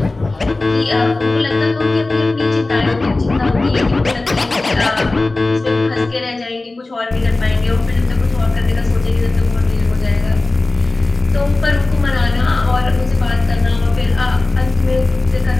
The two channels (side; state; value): right; quieter; 3.1 dB